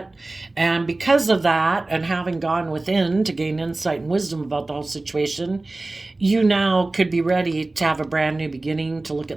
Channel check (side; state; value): left; quieter; 3.0 dB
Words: And because of that, and having gone within to gain insight and wisdom about the whole situation, you now could be ready to have a brand new beginning, to look